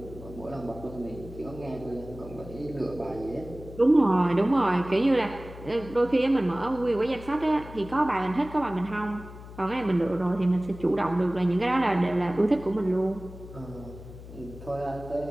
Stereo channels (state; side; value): noise; left; hum, 15 dB below the sound